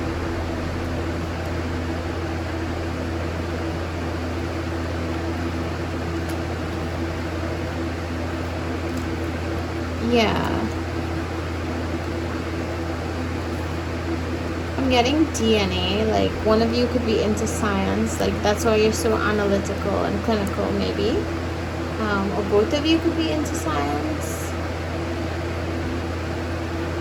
Yeah. I'm getting DNA, like one of you could be into science, like that's why you're so analytical and clinical maybe. Or both of you could be into science.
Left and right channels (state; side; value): identical; both; correlation 1.00